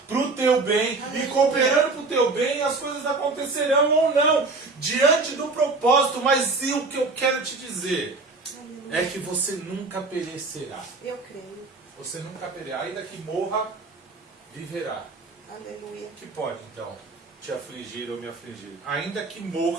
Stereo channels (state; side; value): quieter; left; 3.8 dB